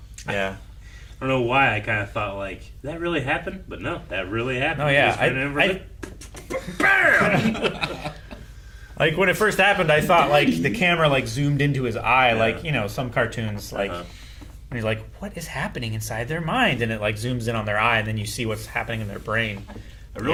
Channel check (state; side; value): identical; both; correlation 1.00